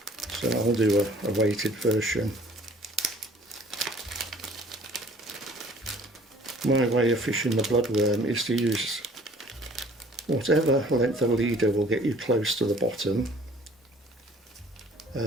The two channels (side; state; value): both; normal; correlation 0.53